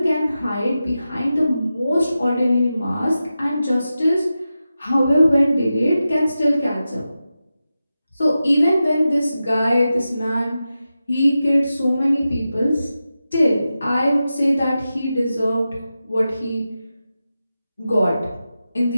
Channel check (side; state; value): both; inverted; correlation -0.92